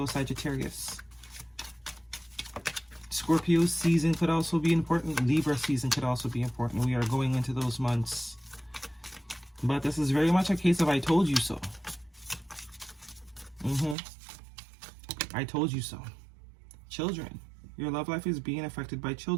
Sagittarius. Scorpio season could also be important. Libra season could also be important. We are going into those months. But this is very much a case of I told you so. I told you so. Children. Your love life is being affected by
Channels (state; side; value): drops out; left; at 14.0 s